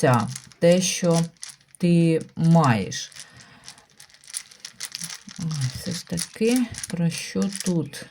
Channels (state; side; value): identical; both; correlation 1.00